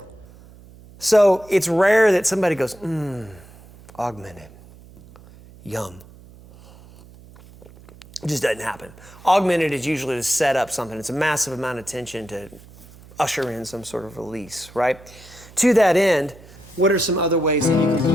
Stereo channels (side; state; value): right; noise; hum, 22 dB below the sound